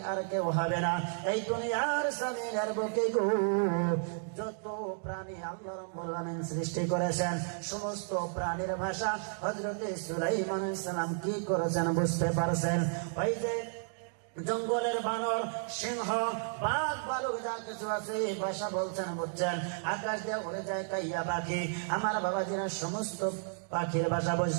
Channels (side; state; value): left; silent; digital silence